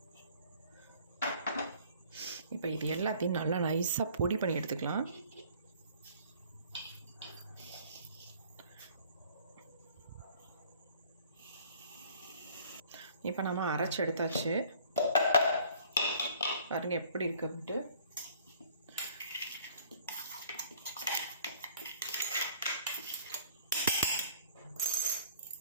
இப்போ இது எல்லாத்தையும் நல்லா நைஸாக பொடி பண்ணி எடுத்துக்கலாம். இப்போ நம்ம அரைச்சி எடுத்தாச்சு. பாருங்க எப்படி இருக்கு அப்படின்ட்டு.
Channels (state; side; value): inverted; both; correlation -0.54